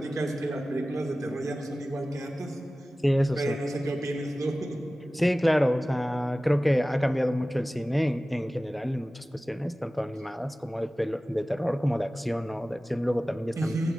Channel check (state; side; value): normal; both; correlation 0.97